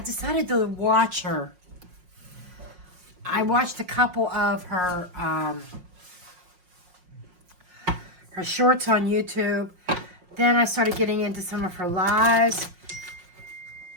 to watch her. I watched a couple of her shorts on YouTube. Then I started getting into some of her lives.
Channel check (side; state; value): left; late; 5.5 ms